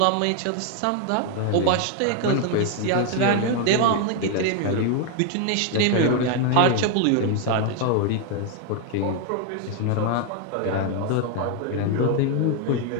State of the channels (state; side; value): different; both; correlation 0.00